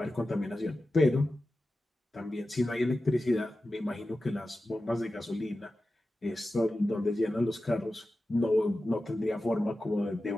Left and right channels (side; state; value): both; normal; correlation 0.93